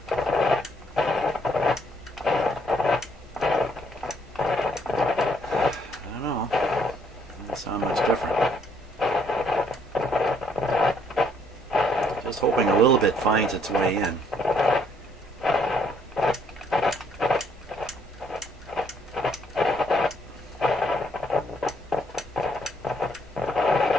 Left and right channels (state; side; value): normal; both; correlation 0.68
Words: don't know. Doesn't sound much different. Just hoping a little bit finds its way in.